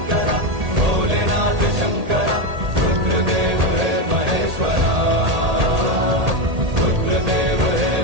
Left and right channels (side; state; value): left; late; 1.8 ms